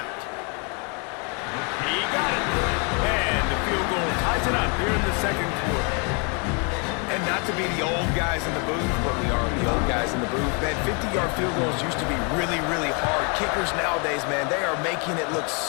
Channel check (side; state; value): right; quieter; 35.2 dB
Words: He got it. And the field goal ties it up here in the second quarter. And not to be the old guys in the booth, but we are the old guys in the booth. Man, 50-yard field goals used to be really, really hard. Kickers nowadays, man, they are making it look